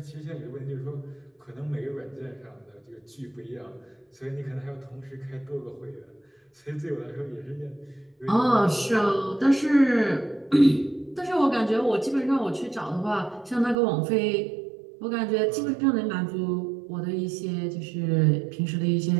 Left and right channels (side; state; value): left; drops out; at 13.8 s